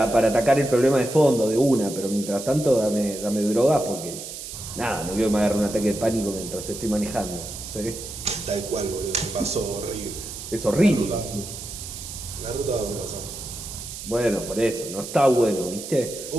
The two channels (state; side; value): noise; right; hiss, 10 dB below the sound